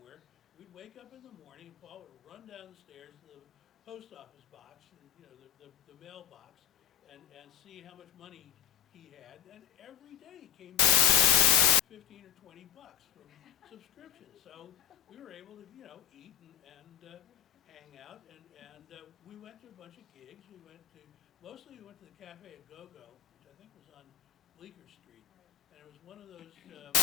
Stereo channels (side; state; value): right; quieter; 10.1 dB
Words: We'd wake up in the morning, and Paul would run down the stairs to the post office box, and, the mailbox, and see how much money he had. And every day he came 15 or 20 bucks from subscriptions. So we were able to, eat and hang out, and we went to a bunch of gigs. Mostly we went to the Cafe at Go-Go, which I think was on Bleecker Street. And it was one of those